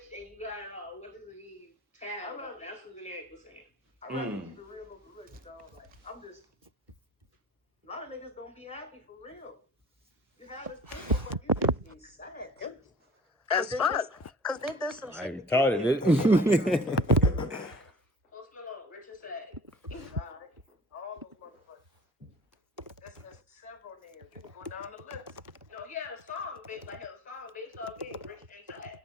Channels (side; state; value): both; normal; correlation 0.45